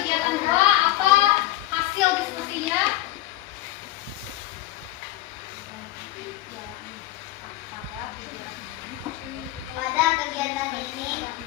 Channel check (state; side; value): quieter; right; 15.8 dB